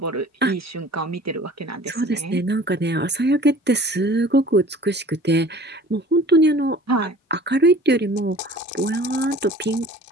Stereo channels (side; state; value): both; normal; correlation 0.47